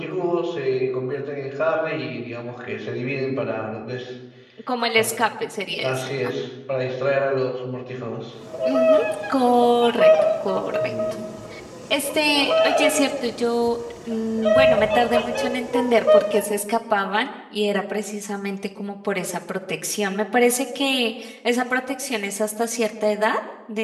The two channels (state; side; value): identical; both; correlation 1.00